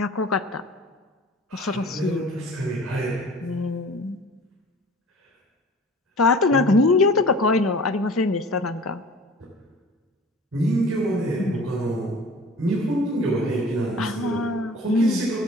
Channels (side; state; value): both; normal; correlation 0.44